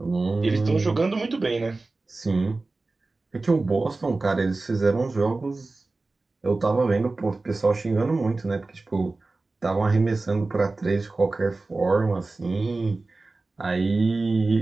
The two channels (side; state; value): left; quieter; 3.4 dB